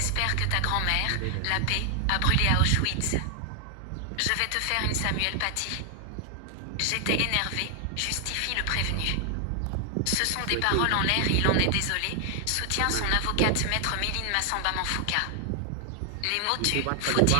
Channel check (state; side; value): different; both; correlation 0.00